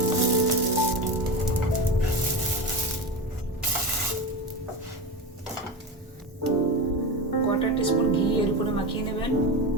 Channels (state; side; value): normal; both; correlation 0.22